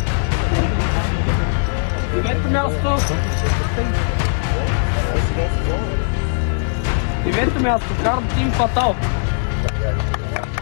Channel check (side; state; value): right; silent; digital silence